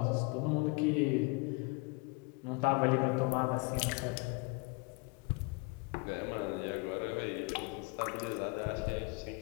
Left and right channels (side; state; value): right; quieter; 28.3 dB